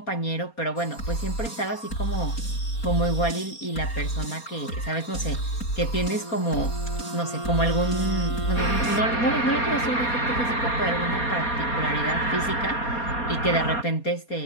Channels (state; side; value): late; right; 4.2 ms